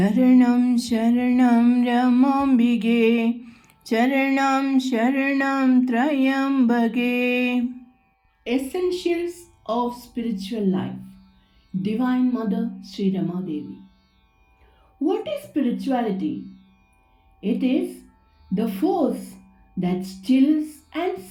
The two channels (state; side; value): identical; both; correlation 1.00